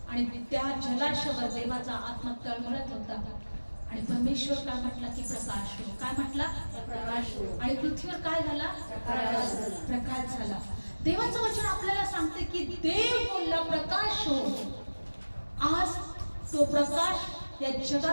आणि त्या जलाशयावर देवाचा आत्मा तळमळत होता आणि परमेश्वर काय म्हटला की प्रकाश हो. काय म्हटला? प्रकाश हो. आणि पृथ्वीवर काय झाला? प्रकाश झाला. देवाचं वचन आपल्याला सांगते की देव बोलला प्रकाश हो. आज तो प्रकाश या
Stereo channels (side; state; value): both; inverted; correlation -1.00